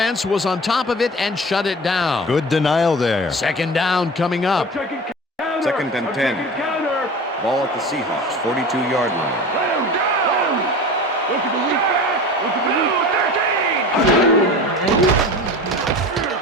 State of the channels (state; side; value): normal; both; correlation 0.35